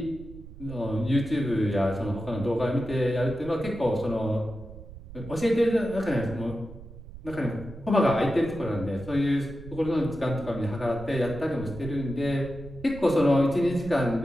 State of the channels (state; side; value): noise; right; rumble, 15 dB below the sound